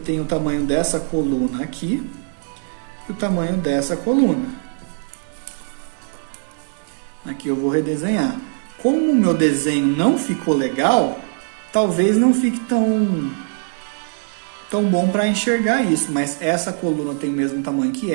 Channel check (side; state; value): left; silent; 65 dB below the other